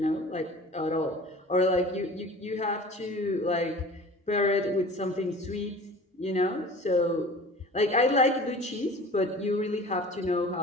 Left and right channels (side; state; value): both; normal; correlation 0.42